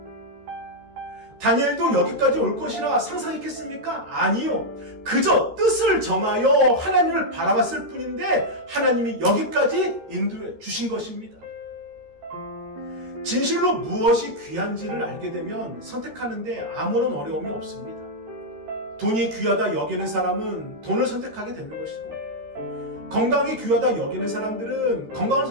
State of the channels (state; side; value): late; left; 13 ms